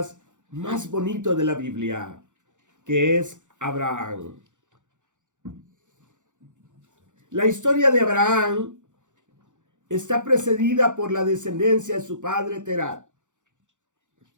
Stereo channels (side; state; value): left; late; 0.86 ms